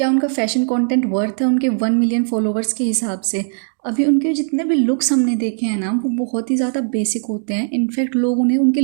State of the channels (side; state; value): left; silent; 67 dB below the other